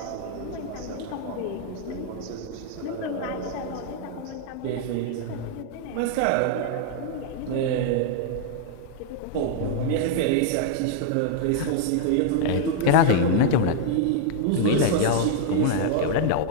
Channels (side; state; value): both; different; correlation 0.00